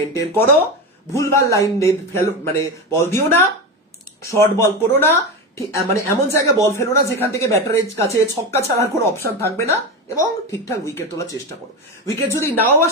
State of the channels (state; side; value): normal; both; correlation 0.19